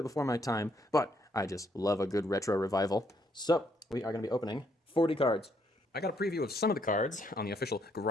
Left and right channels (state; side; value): normal; both; correlation 0.72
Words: before my time, but I just love a good retro revival. So, we are going to be opening 40 cards. I got a preview of some of the cards on the official